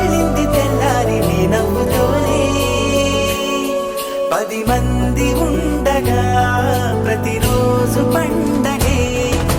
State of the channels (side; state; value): both; identical; correlation 1.00